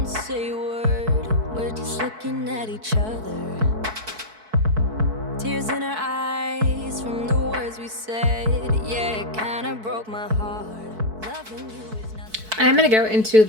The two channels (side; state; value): left; late; 4.6 ms